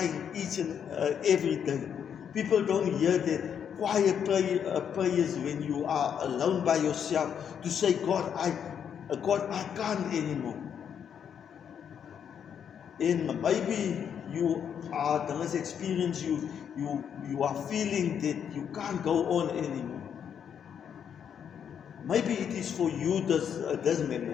each and every day. People don't hear that quiet prayers when you are alone by yourself to say, God, I can't anymore. And maybe you are the less experience, you are feeling that you can't go on anymore. Maybe it is for you this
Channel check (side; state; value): right; quieter; 8.1 dB